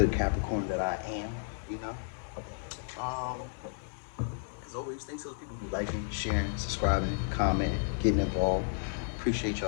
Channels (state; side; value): silent; right; 56 dB below the other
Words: Capricorn that I am. You know. As always, thanks to those people who liking, sharing, subscribing, commenting, getting involved. Appreciate